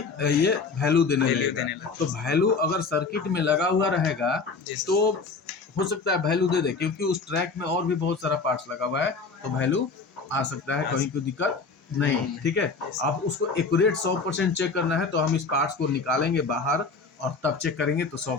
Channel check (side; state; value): right; quieter; 4.4 dB